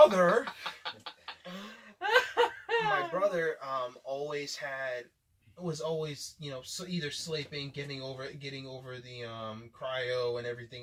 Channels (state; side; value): identical; both; correlation 1.00